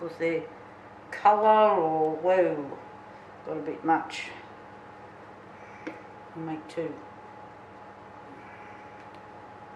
they're colour or, whoa, got a bit much. I'll make 2.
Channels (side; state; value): both; identical; correlation 1.00